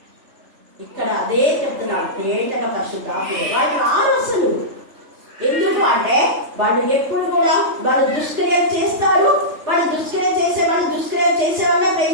ఇక్కడ అదే చెప్తున్నాడు, తేటగా పరిశుద్ధాత్మ వాళ్ళు రారు అసలు. ఎందుకు అంటే వాళ్ళు ఎప్పుడు కూడా వాళ్ళు దుష్క్రియలు చేస్తారు. వాళ్ళు దుష్క్రియ చేసే వాళ్ళే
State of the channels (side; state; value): left; late; 3.4 ms